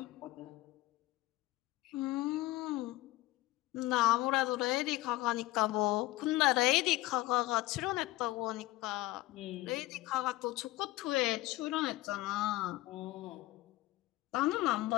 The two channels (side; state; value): right; quieter; 18.1 dB